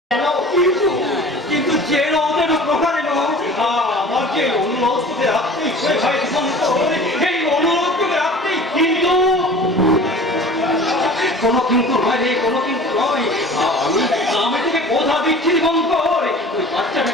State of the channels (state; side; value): normal; both; correlation 0.42